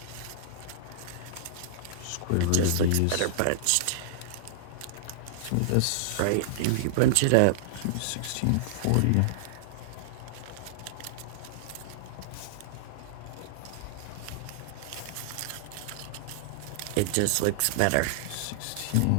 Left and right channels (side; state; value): both; different; correlation -0.01